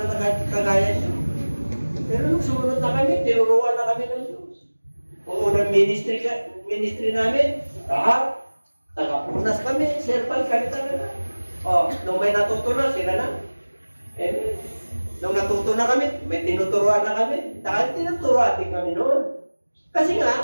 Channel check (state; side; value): inverted; both; correlation -1.00